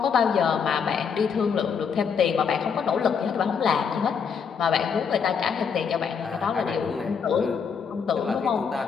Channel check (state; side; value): quieter; right; 6.5 dB